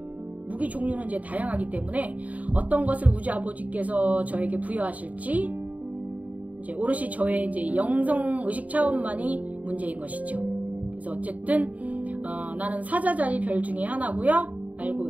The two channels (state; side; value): late; left; 0.071 ms